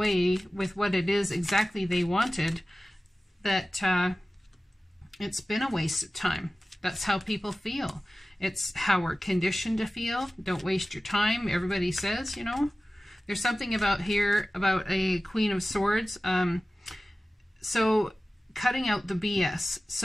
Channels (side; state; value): both; normal; correlation 0.96